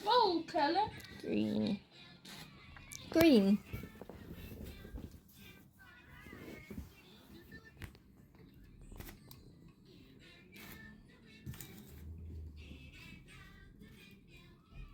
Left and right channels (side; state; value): both; identical; correlation 1.00